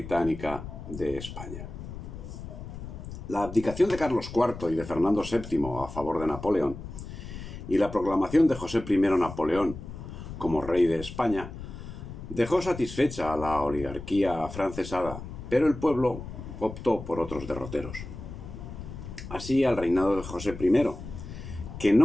de España. La abdicación de Carlos IV y de Fernando VII a favor de Napoleón y la proclamación de José I Napoleón como rey de España dejó satisfecha a la oligarquía afrancesada, pero el pueblo optó por otros derroteros. Así, al reinado de José I, que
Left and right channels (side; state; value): left; noise; rumble, 11 dB below the sound